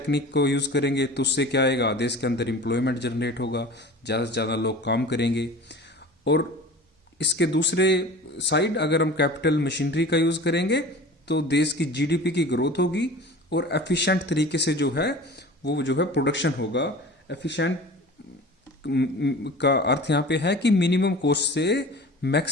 को यूज करेंगे तो उससे क्या आएगा, देश के अंदर एम्प्लॉयमेंट जनरेट होगा, ज्यादा से ज्यादा लोग काम करेंगे। और इसके दूसरे साइड अगर हम कैपिटल मशीनरी का यूज करेंगे तो देश की जीडीपी की ग्रोथ होगी और एफिशिएंट तरीके से जो है वो जो है प्रोडक्शन होगा। एफिशिएंट का अर्थ यहाँ पे है कि मिनिमम कॉस्ट से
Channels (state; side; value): normal; both; correlation 0.39